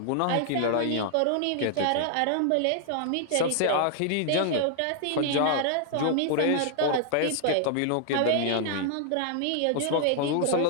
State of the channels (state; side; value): different; both; correlation 0.00